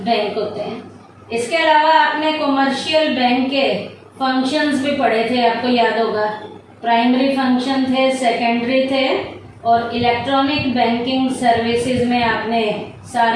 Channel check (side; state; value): both; identical; correlation 1.00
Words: बैंक होते हैं। इसके अलावा आपने कॉमर्शियल बैंक के फंक्शंस भी पढ़े थे, आपको याद होगा। प्राइमरी फंक्शन थे, सेकेंडरी थे, और इलेक्ट्रॉनिक बैंकिंग सर्विसेज में आपने